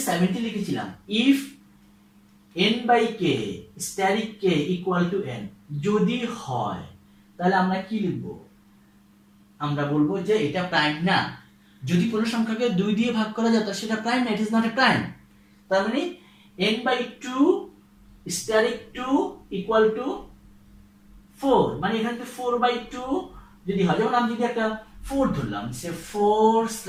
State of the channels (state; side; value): identical; both; correlation 1.00